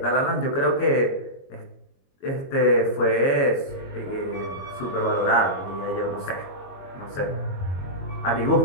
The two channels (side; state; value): right; late; 22 ms